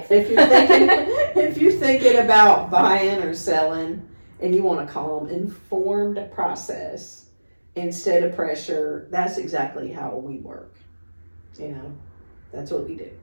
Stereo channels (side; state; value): both; inverted; correlation -1.00